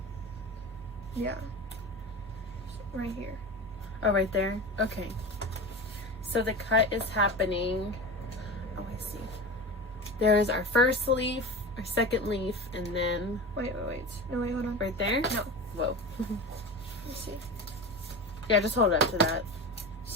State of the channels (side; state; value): both; normal; correlation 0.28